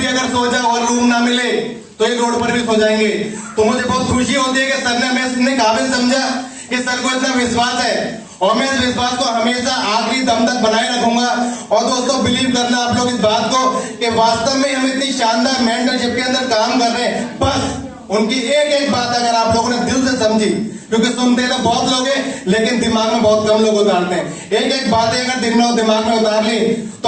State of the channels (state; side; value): identical; both; correlation 1.00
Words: अगर सो जाओ और रूम ना मिले तो ये रोड पर भी सो जाएंगे। तो मुझे बहुत खुशी होती है कि सर ने हमें इतने काबिल समझा कि सर को इतना विश्वास है और मैं इस विश्वास को हमेशा आखिरी दम तक बनाए रखूंगा। और दोस्तों, बिलीव करना आप लोग इस बात को कि वास्तव में हम इतनी शानदार मेंटरशिप के अंदर काम कर रहे हैं। बस उनकी एक एक बात अगर आप लोगों ने दिल से समझी, क्योंकि सुनते तो बहुत लोग हैं लेकिन दिमाग में बहुत कम लोग उतारते हैं, एक एक बातें अगर दिमाग में उतार ली